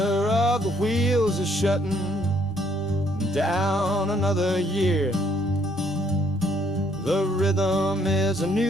of the wheels is shutting down another year. The rhythm is a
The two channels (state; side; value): normal; both; correlation 0.67